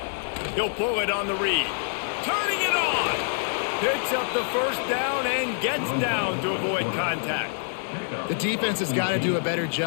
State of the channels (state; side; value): silent; right; 61 dB below the other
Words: He'll pull it on the read. Turning it on. Picks up the first down and gets down to avoid contact. The defense has got to do a better